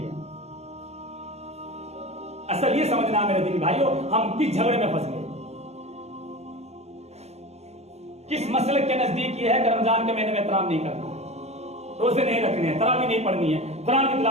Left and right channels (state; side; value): late; left; 0.31 ms